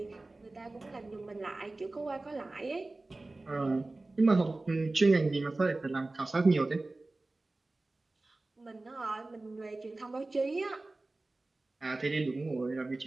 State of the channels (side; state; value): left; quieter; 3.1 dB